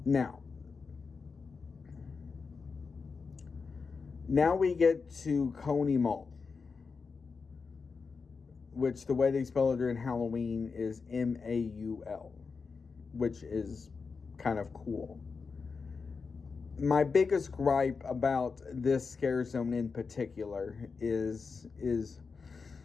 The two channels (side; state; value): right; quieter; 4.9 dB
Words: Now we get to Coney Mall, which the way they spell it during Halloween is Maul, which is kind of cool. My biggest gripe about this scare zone in particular is